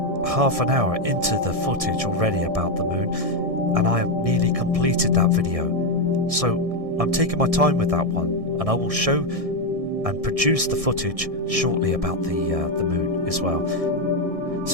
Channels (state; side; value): late; left; 1.6 ms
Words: half an hour into the footage already about the moon, and I have nearly completed that video. So I'm taking my time with that one, and I will show and produce the footage shortly about the moon as well.